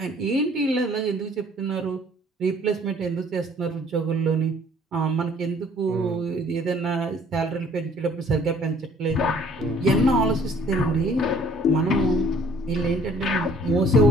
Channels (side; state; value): both; normal; correlation 0.56